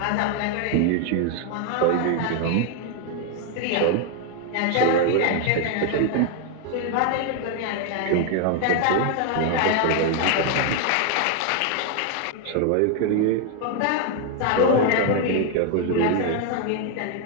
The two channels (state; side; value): different; both; correlation 0.01